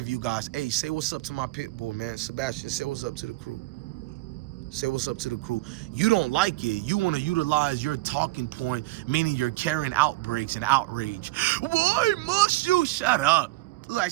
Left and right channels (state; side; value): quieter; left; 19.9 dB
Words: you guys. Hey, say what's up to my pit bull, man. Sebastian, say what's up to the crew. Say what's up to the crew. You don't like it. You want to utilize your talking point, meaning you're carrying outbreaks and outrage. Why must you shut up? Like